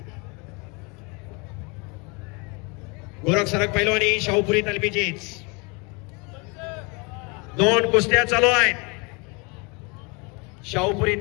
गोरख सरक पैलवानी शाहपुरी तालमीचीच. दोन कुस्त्या चालू आहेत. शाहपुरी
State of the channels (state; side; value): quieter; right; 30.3 dB